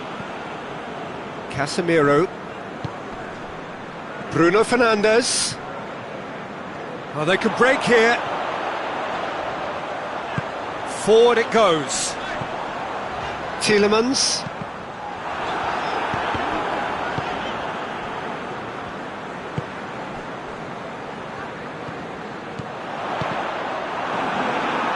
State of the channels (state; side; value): identical; both; correlation 1.00